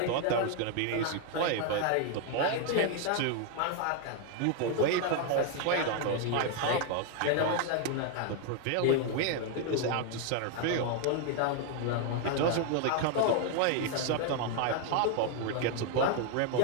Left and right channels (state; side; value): different; both; correlation 0.00